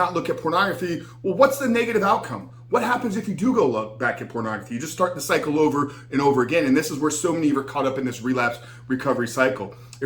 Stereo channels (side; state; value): both; identical; correlation 1.00